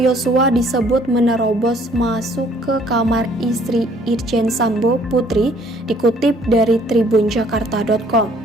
Yosua disebut menerobos masuk ke kamar istri Irjen Sambo Putri, dikutip dari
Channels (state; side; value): normal; both; correlation 0.60